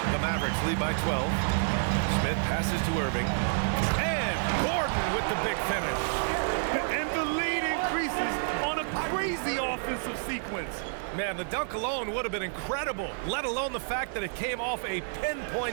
The Mavericks lead by 12. Smith passes to Irving. And Gordon with the big finish. And the lead increases on a crazy offensive sequence. Man, the dunk alone would have been incredible, let alone the fact that it came off a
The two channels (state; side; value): silent; left; digital silence